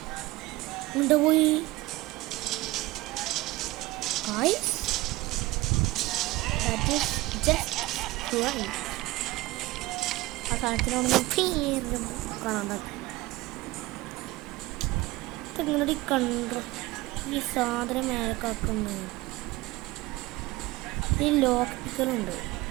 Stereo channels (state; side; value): quieter; left; 20.0 dB